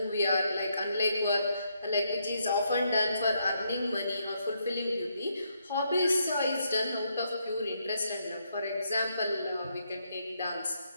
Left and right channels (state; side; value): inverted; both; correlation -0.77